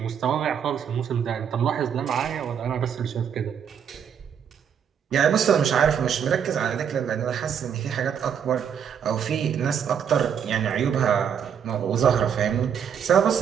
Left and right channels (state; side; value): quieter; left; 8.0 dB